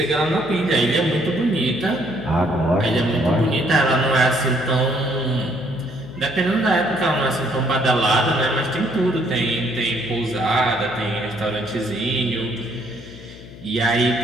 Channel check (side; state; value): left; noise; hum, 17 dB below the sound